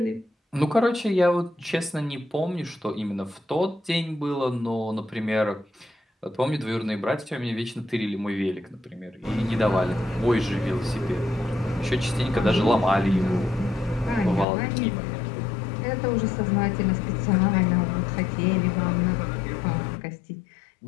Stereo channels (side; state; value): right; drops out; at 14.5 s